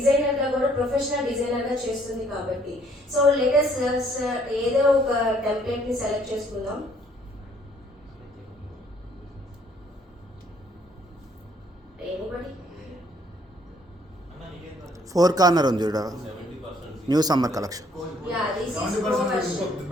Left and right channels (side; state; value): both; normal; correlation 0.63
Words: గా కూడా ప్రొఫెషనల్ డిజైనర్ గా చేస్తుంది కాబట్టి. సో లెటెస్ట్ ఏదో ఒక టెంప్లెట్ ని సెలెక్ట్ చేసుకుందాం. ఎనీబడి 4 కార్నర్ ఉంది చూడ, new summer collection. Yeah this is pro version.